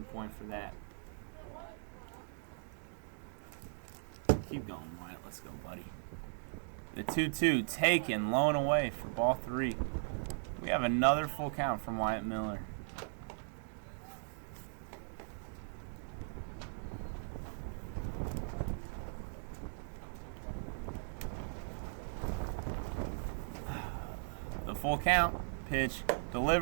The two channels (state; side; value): silent; left; digital silence